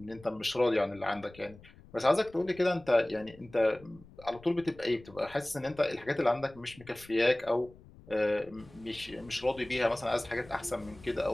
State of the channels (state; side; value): noise; left; rumble, 22 dB below the sound